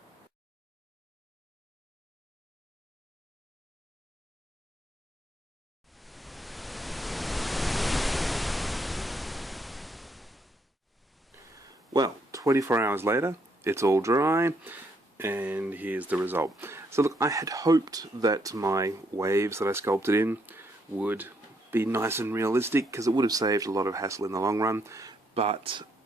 Well, 24 hours later, it's all dry, and here's the result. So look, I had hoped that my waves that I sculpted in would be nice and realistic, because it would have saved a lot of hassle in the long run, but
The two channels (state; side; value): normal; both; correlation 0.73